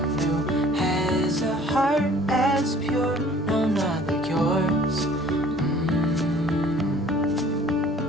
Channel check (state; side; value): normal; both; correlation 0.53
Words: who has a heart as pure, no, not like yours.